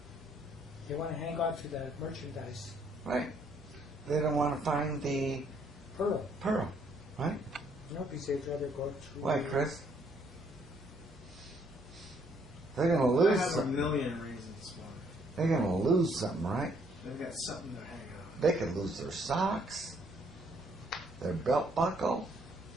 They want to hang on to the merchandise. Right. They don't want to find the Pearl. right? No, because they'd rather go through. Why, Chris? They're gonna I lose. have a Some, million reasons why. they're gonna lose something, right? They've got something they're hanging on. They could lose their socks, their belt buckle.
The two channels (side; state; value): both; normal; correlation 0.67